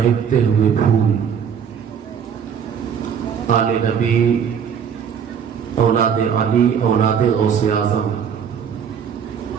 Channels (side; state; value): left; quieter; 7.6 dB